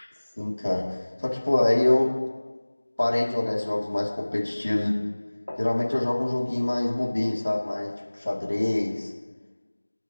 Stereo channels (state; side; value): inverted; both; correlation -1.00